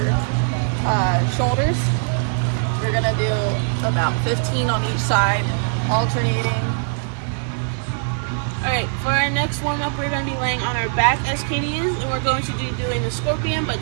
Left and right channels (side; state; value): left; silent; digital silence